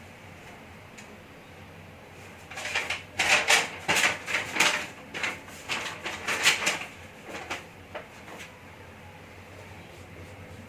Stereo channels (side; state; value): both; identical; correlation 1.00